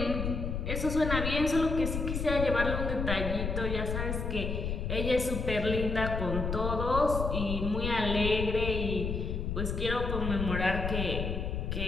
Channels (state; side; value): noise; left; rumble, 2 dB below the sound